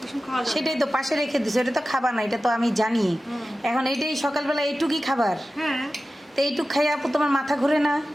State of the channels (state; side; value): normal; both; correlation 0.94